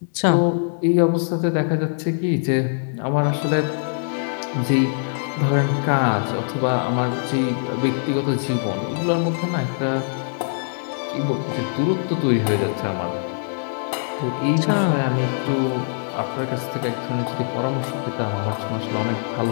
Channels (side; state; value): right; silent; 64 dB below the other